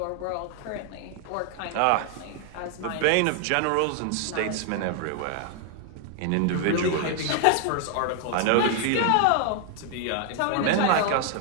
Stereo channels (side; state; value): both; different; correlation 0.00